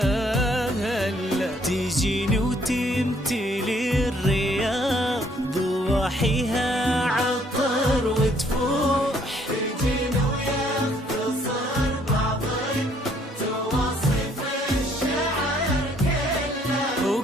تجيني وتمتلي الرياض ضواحيها عطر وتفوح، تجيني ويختصر بعض تواصف الشعر كله،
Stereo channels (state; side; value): normal; both; correlation 0.65